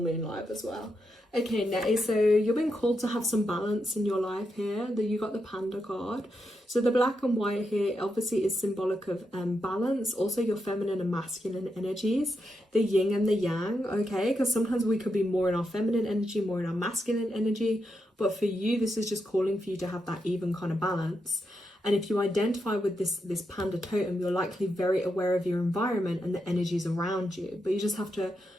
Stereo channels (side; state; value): both; normal; correlation 0.84